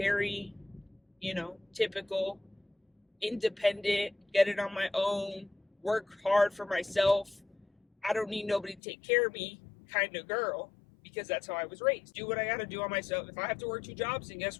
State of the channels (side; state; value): right; drops out; at 8.8 s